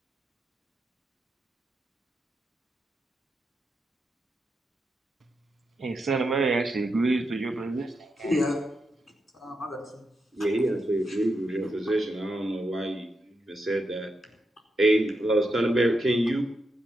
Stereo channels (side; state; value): both; normal; correlation 0.85